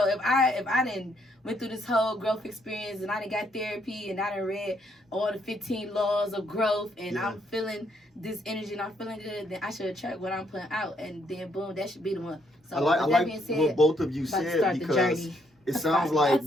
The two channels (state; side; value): normal; both; correlation 0.72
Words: if I didn't went through this whole growth experience and I done got therapy and I done read all the 15 laws of growth and Yeah. I'm feeling this energy and I'm feeling good, then I should track what I'm putting out, and then boom, that should be the one. So I like with that being said, what both of you about to said, start the because journey. it sounds like